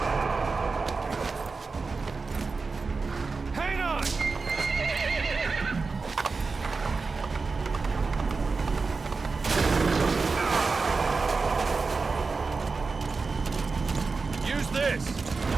Hang on! Use this!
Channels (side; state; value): left; quieter; 4.3 dB